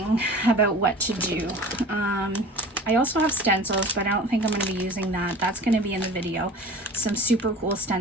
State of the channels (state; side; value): normal; both; correlation 0.41